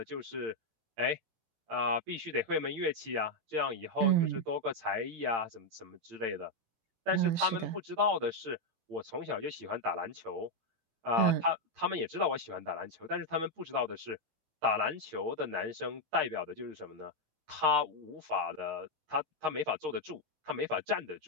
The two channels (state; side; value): late; left; 17 ms